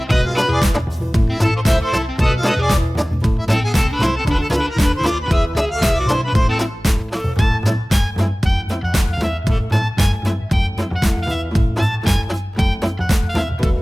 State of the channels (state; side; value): normal; both; correlation 0.98